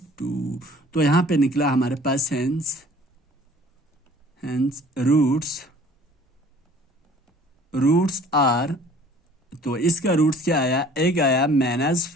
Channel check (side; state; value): both; normal; correlation 0.51